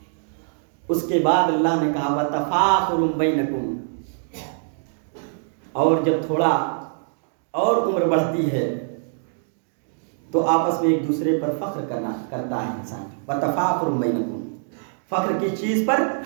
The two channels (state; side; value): silent; left; digital silence